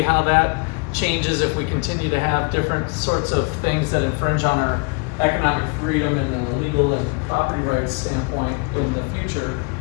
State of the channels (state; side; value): quieter; right; 32.4 dB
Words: how that changes if we continue to have different sorts of things that infringe on our economic freedom and the legal and property rights standpoint in the future.